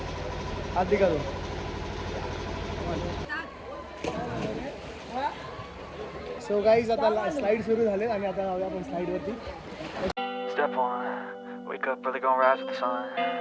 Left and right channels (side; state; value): both; identical; correlation 1.00